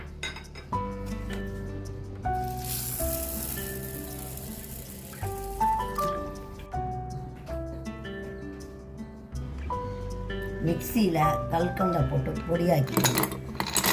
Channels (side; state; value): both; identical; correlation 1.00